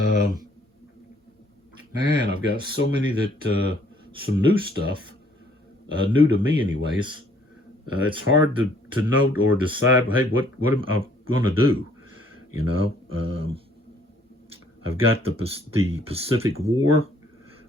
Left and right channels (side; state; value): both; normal; correlation 0.62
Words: I've got so many that some new stuff, new to me anyways. It's hard to note or decide, hey, what am I going to do? You know, I've got the Pacific War.